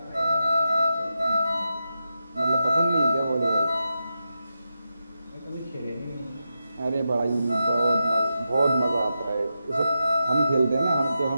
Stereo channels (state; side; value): inverted; both; correlation -0.88